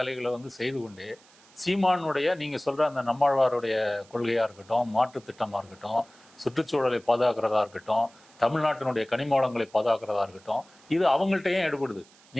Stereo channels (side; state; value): right; noise; hiss, 27 dB below the sound